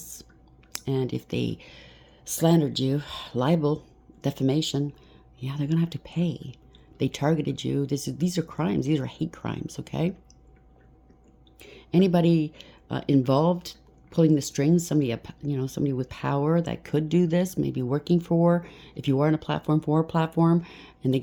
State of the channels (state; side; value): identical; both; correlation 1.00